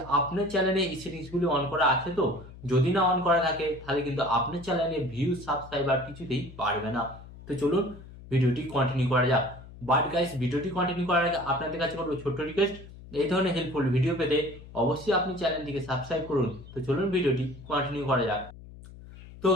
আপনার চ্যানেলে এই সেটিংসগুলি অন করা আছে। তো যদি না অন করা থাকে তাহলে কিন্তু আপনার চ্যানেলে ভিউজ সাবস্ক্রাইবার কিছুতেই বাড়বে না। তো চলুন ভিডিওটি কন্টিনিউ করা যাক। বাট গাইস, ভিডিওটি কন্টিনিউ করার আগে আপনাদের কাছে করবো ছোট্ট রিকোয়েস্ট, এই ধরনের হেল্পফুল ভিডিও পেতে অবশ্যই আপনি চ্যানেলটিকে সাবস্ক্রাইব করুন। তো চলুন ভিডিওটি কন্টিনিউ করা যাক। তো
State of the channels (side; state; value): left; noise; hum, 17 dB below the sound